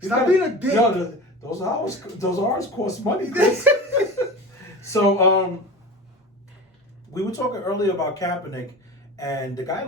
Stop gotta- being a dick. Yo, those R's cost money, Chris. So, we were talking earlier about Kaepernick, and the guy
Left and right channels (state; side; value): normal; both; correlation 0.33